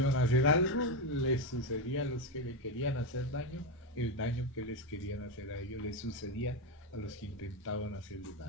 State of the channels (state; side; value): normal; both; correlation 0.10